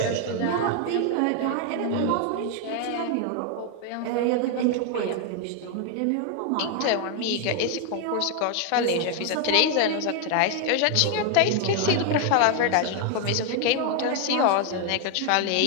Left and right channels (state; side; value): different; both; correlation 0.00